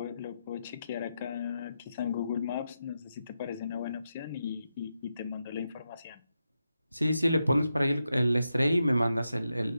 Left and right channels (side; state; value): both; inverted; correlation -0.87